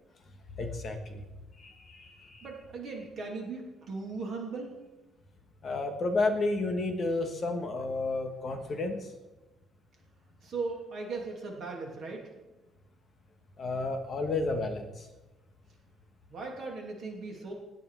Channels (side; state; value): both; normal; correlation 0.73